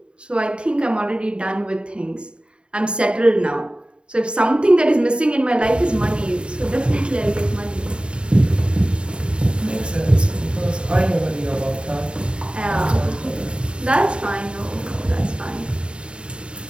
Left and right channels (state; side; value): late; left; 0.053 ms